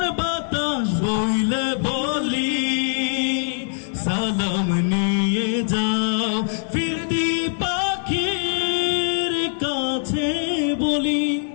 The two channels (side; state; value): right; silent; digital silence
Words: বাতাস বইলে বলি সালাম নিয়ে যাও ফিরতি পাখির কাছে বলি